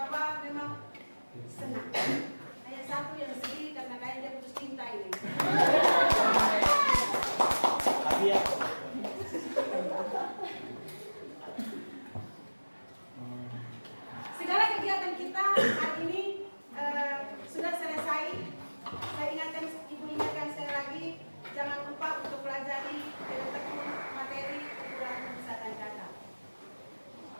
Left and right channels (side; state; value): both; inverted; correlation -1.00